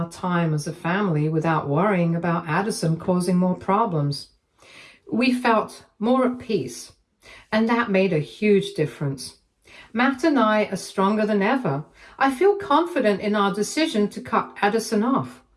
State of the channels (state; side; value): identical; both; correlation 1.00